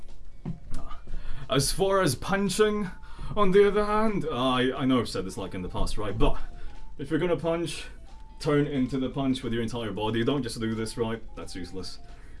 As far as punching, on the other hand, I know I've said this like in the past, right? But if you're gonna punch, turn into the punch with your entire body. Don't just do this, right? That's useless,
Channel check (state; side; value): identical; both; correlation 1.00